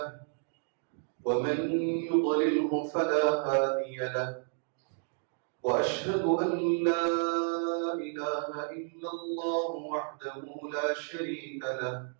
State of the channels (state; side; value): silent; left; 57 dB below the other